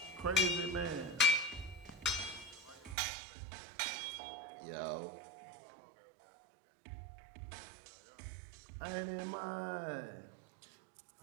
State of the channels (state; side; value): drops out; left; at 3.0 s